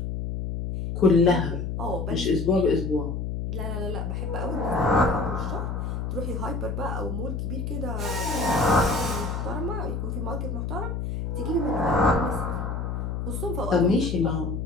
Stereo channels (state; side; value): noise; left; hum, 3 dB below the sound